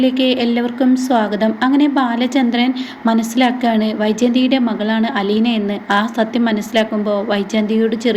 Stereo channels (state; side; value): identical; both; correlation 1.00